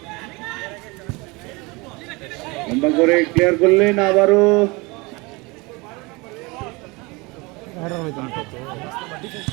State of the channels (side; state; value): left; quieter; 25.7 dB